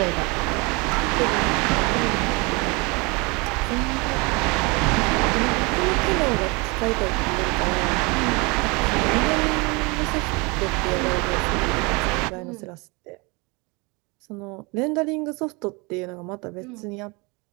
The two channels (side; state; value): left; quieter; 27.8 dB